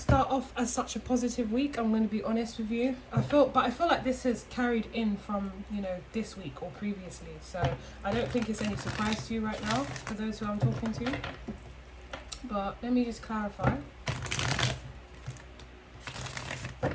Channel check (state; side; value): identical; both; correlation 1.00